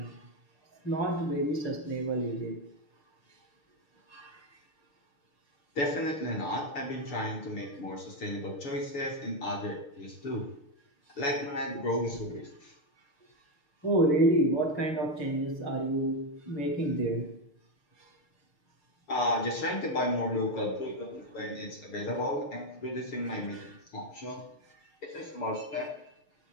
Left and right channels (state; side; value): late; right; 6.6 ms